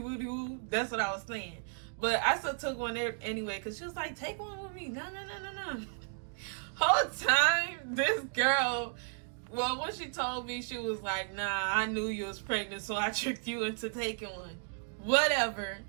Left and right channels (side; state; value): left; silent; 55 dB below the other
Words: woo. That's what I was saying. But I still took one there anyway, because she was like, take one with me. No. Whole time, this girl, well, when she told me, she was like, nah, I knew you was pregnant, so I tricked you into taking one. Whatever.